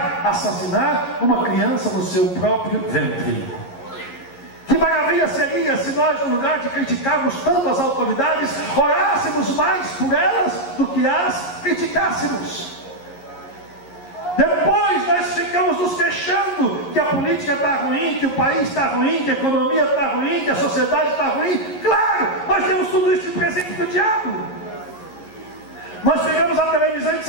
assassinar uma criança no seu próprio ventre. Que maravilha seria se nós, no lugar de criticarmos tanto as autoridades, orássemos mais por elas do que as criticássemos. Depois nós ficamos nos queixando que a política está ruim, que o país está ruim, que a economia está ruim, que a sociedade está ruim. Claro, nós temos tudo isso de presente do diabo. Nós pegamos a televisão e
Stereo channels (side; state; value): right; late; 11 ms